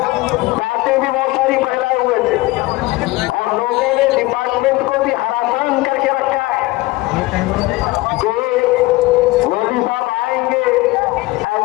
बातें भी बहुत सारी फैलाए हुए थे और लोगों ने डिपार्टमेंट को भी हरासान करके रखा है कि मोदी साहब आएंगे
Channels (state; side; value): quieter; right; 20.6 dB